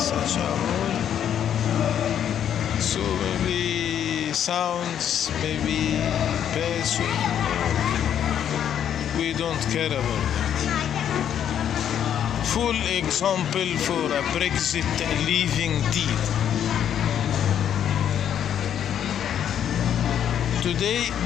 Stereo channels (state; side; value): quieter; right; 9.5 dB